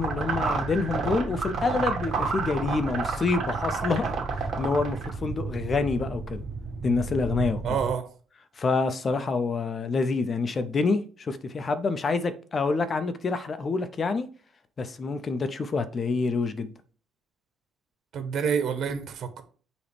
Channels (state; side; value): normal; both; correlation 0.75